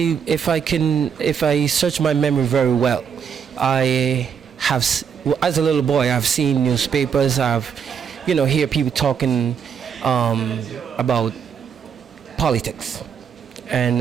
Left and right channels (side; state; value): left; quieter; 7.2 dB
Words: if I search my memory very well, I have, as a little boy, I've seen newspapers. I've, hear people talking about politics, and